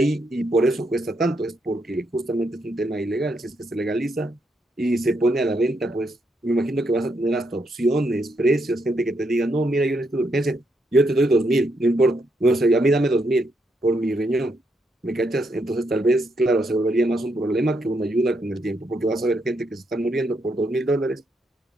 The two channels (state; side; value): normal; both; correlation 0.78